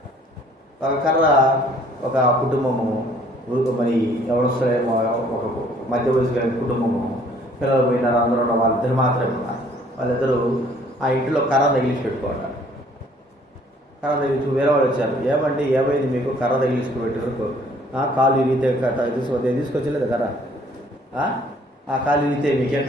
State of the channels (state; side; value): normal; both; correlation 0.59